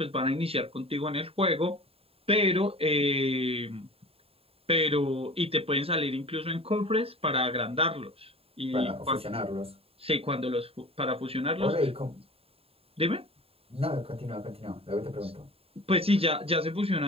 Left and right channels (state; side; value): late; left; 0.28 ms